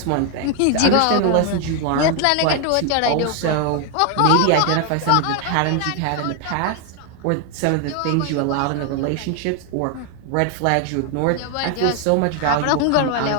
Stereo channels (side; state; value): both; different; correlation 0.00